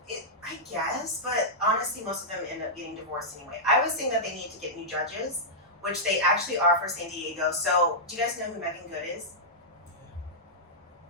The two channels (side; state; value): both; normal; correlation -0.10